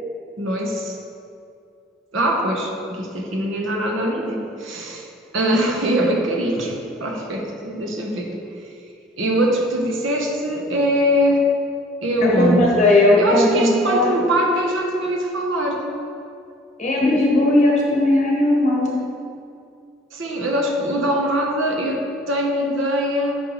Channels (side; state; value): both; normal; correlation 0.51